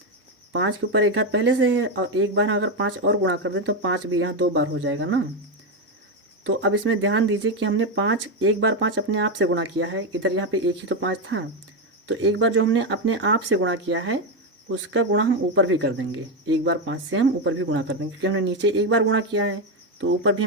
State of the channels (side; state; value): both; normal; correlation 0.09